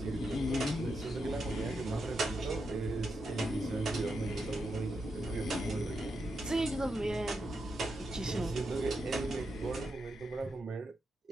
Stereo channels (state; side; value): normal; both; correlation 0.84